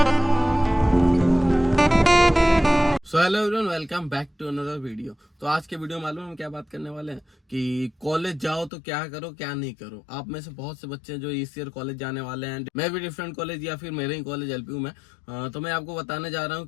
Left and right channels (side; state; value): right; drops out; at 8.7 s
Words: So hello everyone, welcome back to another video. तो आज के वीडियो में मालूम हम क्या बात करने वाले हैं कि कॉलेज जाओ तो क्या करो क्या नहीं करो। आप में से बहुत से बच्चे जो इस ईयर कॉलेज जाने वाले हैं, मैं भी डिफरेंट कॉलेज या फिर मेरे ही कॉलेज एलपीयू में, तो मैं आपको बताने जा रहा हूँ